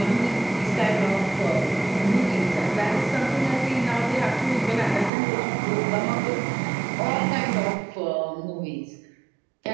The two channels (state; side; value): drops out; left; at 5.1 s